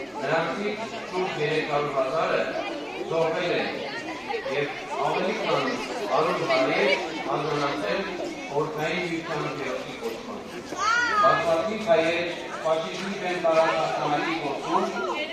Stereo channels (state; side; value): identical; both; correlation 1.00